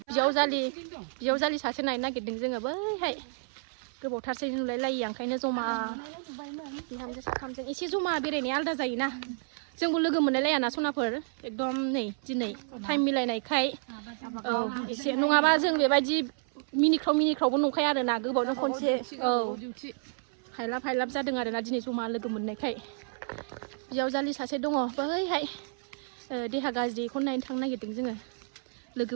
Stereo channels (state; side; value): silent; left; 58 dB below the other